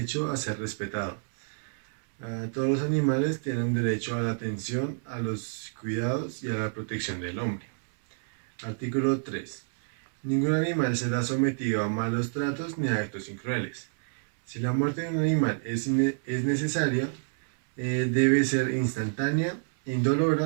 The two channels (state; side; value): silent; left; digital silence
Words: a ser respetado. Todos los animales tienen derecho a la atención, a los cuidados y a la protección del hombre. Artículo 3. Ningún animal será sometido a malos tratos ni a actos crueles. Si la muerte de un animal es necesaria, debe ser instantánea,